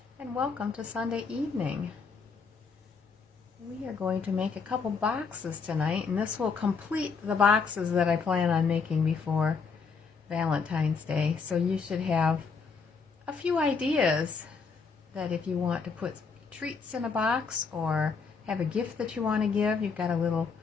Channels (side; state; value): right; quieter; 5.2 dB